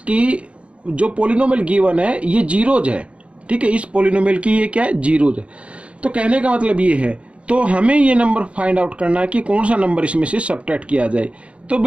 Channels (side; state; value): left; late; 0.061 ms